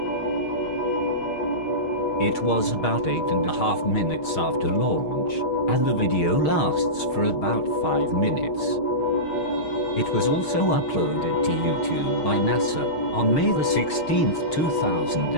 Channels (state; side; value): late; right; 6.4 ms